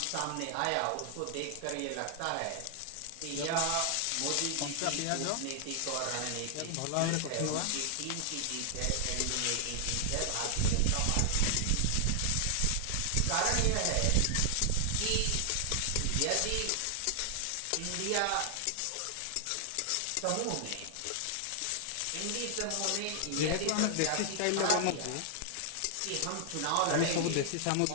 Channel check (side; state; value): both; different; correlation 0.00